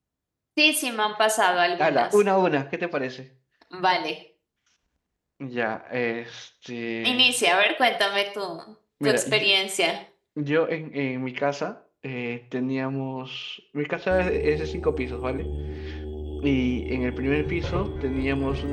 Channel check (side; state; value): both; identical; correlation 1.00